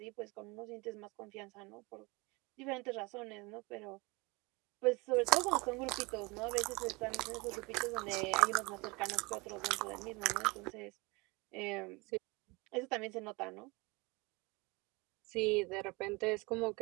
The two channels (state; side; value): quieter; left; 26.1 dB